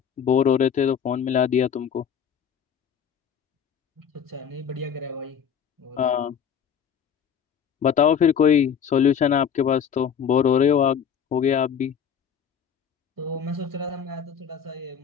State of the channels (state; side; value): quieter; right; 7.7 dB